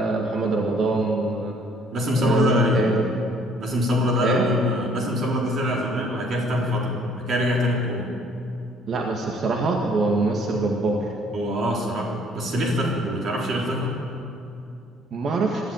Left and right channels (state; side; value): normal; both; correlation 0.60